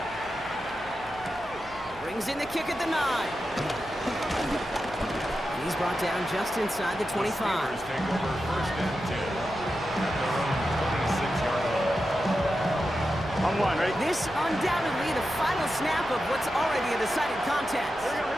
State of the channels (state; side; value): noise; right; hum, 21 dB below the sound